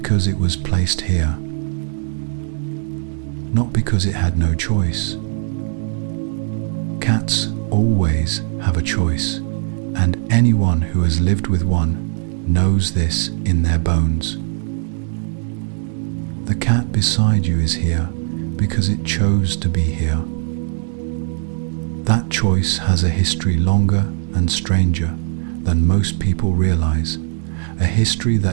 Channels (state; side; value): silent; left; 61 dB below the other